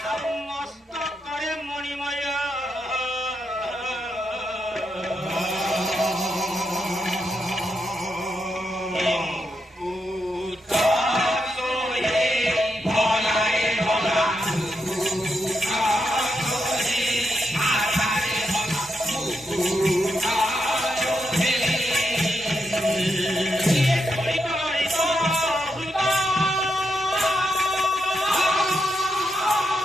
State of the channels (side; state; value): both; normal; correlation 0.83